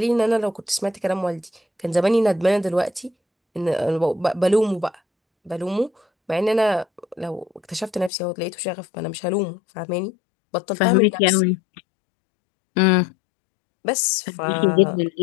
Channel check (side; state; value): right; drops out; at 8.1 s